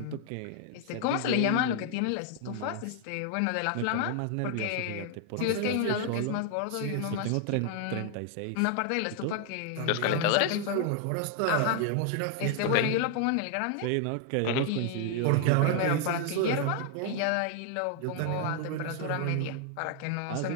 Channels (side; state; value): both; different; correlation 0.00